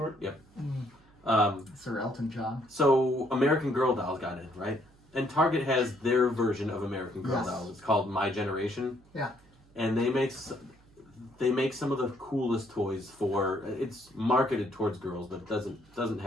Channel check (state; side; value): noise; right; hum, 28 dB below the sound